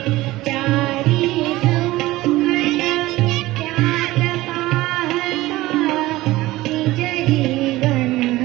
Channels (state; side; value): quieter; left; 18.0 dB